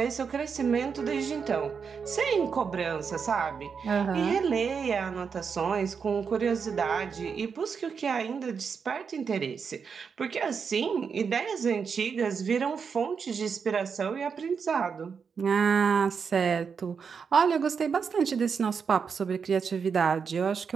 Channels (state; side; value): quieter; left; 6.1 dB